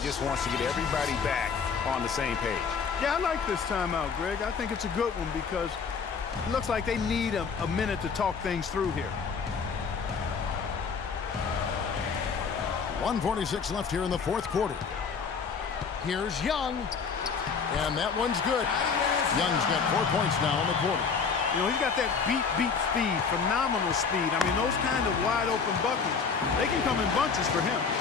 just wants to get everybody back on the same page. Yeah, I like this timeout, Greg. I think it's a good one because it looks like they need a minute to talk things through here. 1:46 left here in the fourth quarter. Here's Young. And that one's good. Young's got 4 points now in the quarter. You know, he's got that beat speed, phenomenal speed. I mean, those kind of wide-open buckets, they can come in bunches for him.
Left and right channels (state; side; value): quieter; right; 5.7 dB